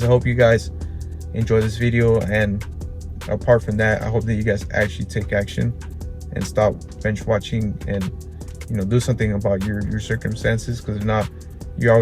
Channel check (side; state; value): both; identical; correlation 1.00